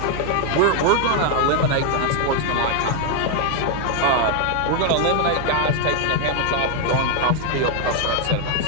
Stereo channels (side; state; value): both; different; correlation 0.01